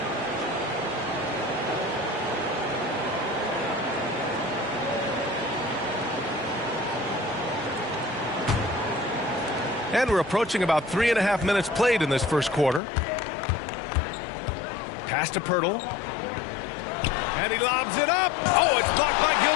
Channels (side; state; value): right; drops out; at 12.8 s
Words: And we're approaching about 3.5 minutes played in this first quarter. Pass to Pirtle. And he lobs it up. Oh, it's blocked by